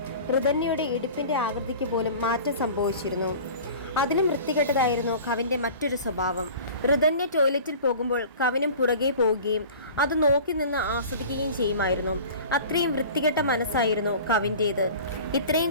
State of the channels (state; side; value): inverted; both; correlation -0.41